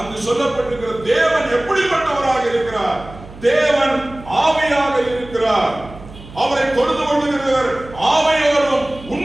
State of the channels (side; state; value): right; noise; hum, 17 dB below the sound